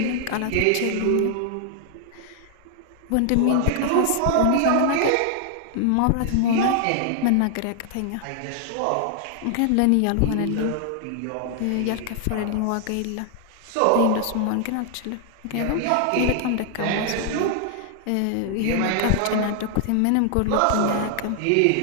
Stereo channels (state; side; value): different; both; correlation 0.00